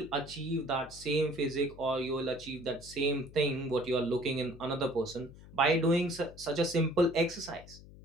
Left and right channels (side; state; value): left; noise; hum, 19 dB below the sound